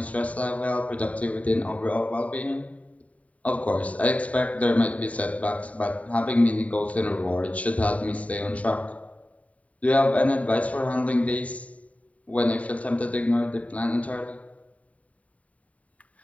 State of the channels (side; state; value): right; late; 0.068 ms